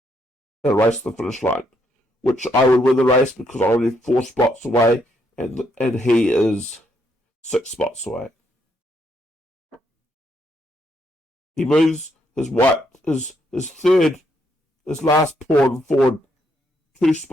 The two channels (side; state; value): both; normal; correlation 0.75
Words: and race to the finish line, which I would win the race because I'm only 4 spots away, and he is 6 spots away. He moves his last pawn forward 2